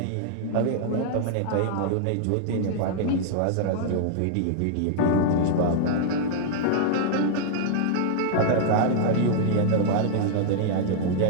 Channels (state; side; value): different; both; correlation -0.01